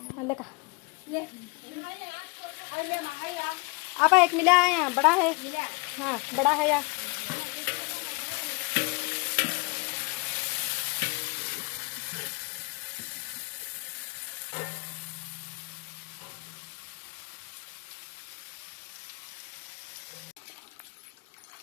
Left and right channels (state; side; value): quieter; right; 28.3 dB